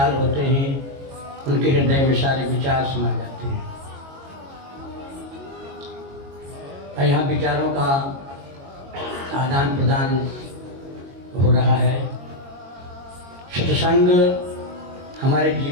होते हैं उनके हृदय में सारे विचार समा जाते हैं। और यहाँ विचारों का आदान प्रदान हो रहा है। सत्संग हमारे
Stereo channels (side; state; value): left; late; 22 ms